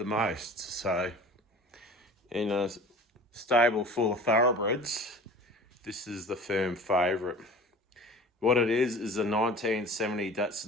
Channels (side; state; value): both; normal; correlation 0.41